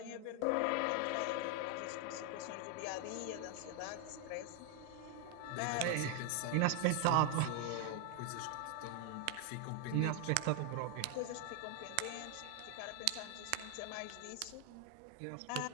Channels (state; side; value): different; both; correlation 0.00